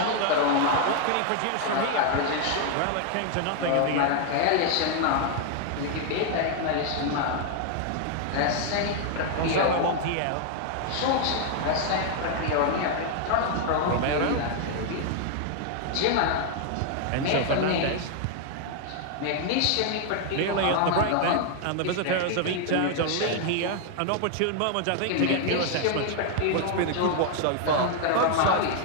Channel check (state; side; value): different; both; correlation 0.00